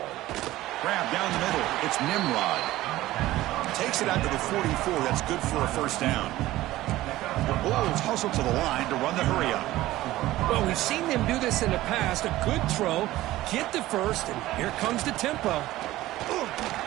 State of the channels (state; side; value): quieter; left; 16.3 dB